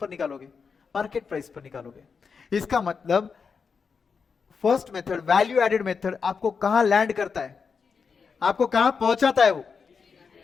निकालोगे? मार्केट प्राइस पर निकालोगे। इसका मतलब first method, value added method, आपको कहां लैंड करता है? आपको कहां पहुंचाता है? वो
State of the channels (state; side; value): quieter; right; 5.6 dB